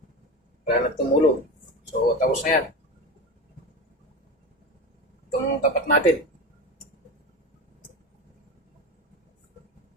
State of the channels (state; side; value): normal; both; correlation 0.25